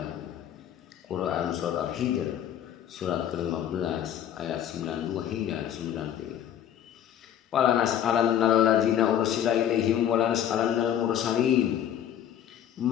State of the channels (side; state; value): right; quieter; 10.3 dB